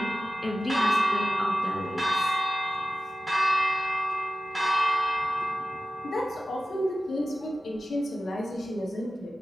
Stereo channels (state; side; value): normal; both; correlation 0.95